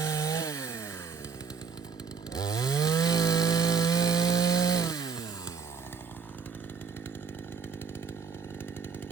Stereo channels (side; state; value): left; quieter; 5.9 dB